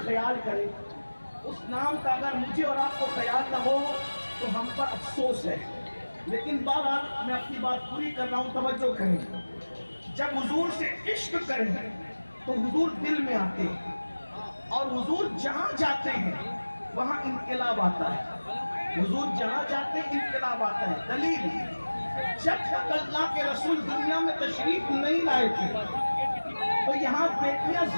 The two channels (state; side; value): inverted; both; correlation -1.00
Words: خیال کرے، اس نام کا اگر مجھے اور آپ کو خیال نہ ہو تو ہم پر افسوس ہے۔ لیکن بہرحال میں اپنی بات پوری کر رہا ہوں، توجہ کریں۔ جب حضور سے عشق کریں تو حضور دل میں آتے ہیں، اور حضور جہاں جاتے ہیں وہاں انقلاب آتا ہے۔ حضور جہاں جاتے ہیں انقلاب آتا ہے۔ دلیل، جب تک اللہ کے رسول دنیا میں تشریف نہیں لائے تھے تو یہاں بیٹیاں